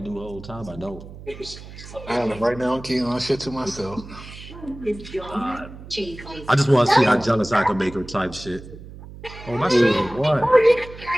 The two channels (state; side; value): noise; right; hum, 15 dB below the sound